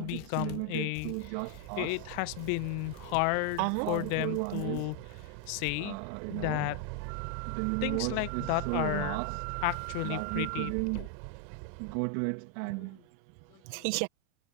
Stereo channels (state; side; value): different; both; correlation 0.00